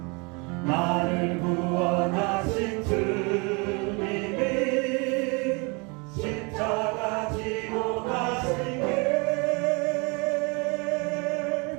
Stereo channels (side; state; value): left; quieter; 30.4 dB